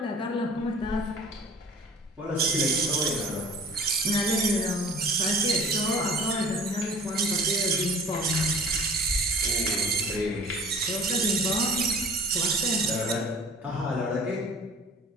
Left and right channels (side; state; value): both; normal; correlation 0.45